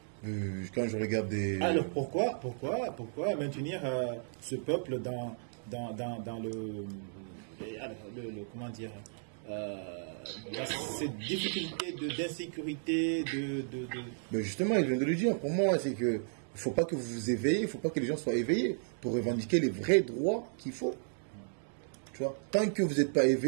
Quand je regarde des... Alors pourquoi maintenir ce peuple dans le comment dire, cette difficulté d'insécurité, Mais justement, il vient de le dire. Pour moi, c'est que il ne faut pas que vous vous éveillez, il ne faut pas que les gens soient éveillés pour revendiquer les vrais droits qu'il faut. Tu vois, tant que vous n'êtes pas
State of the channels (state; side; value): silent; left; digital silence